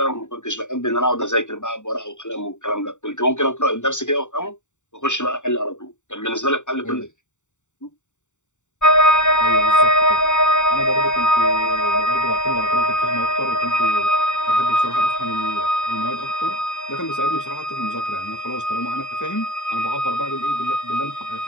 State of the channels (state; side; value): late; right; 0.84 ms